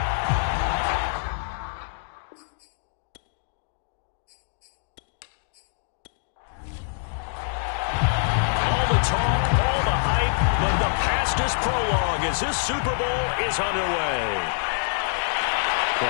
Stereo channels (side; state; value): right; silent; digital silence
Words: All the talk, all the hype, but the fastest prologue as this Super Bowl is underway.